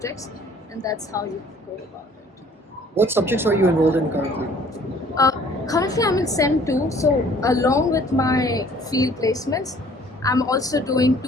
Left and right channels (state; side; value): normal; both; correlation 0.55